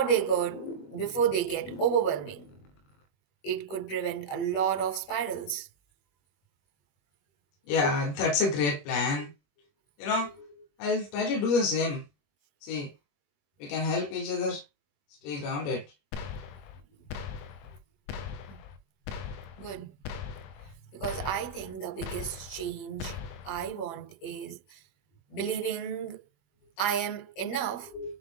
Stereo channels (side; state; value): right; late; 21 ms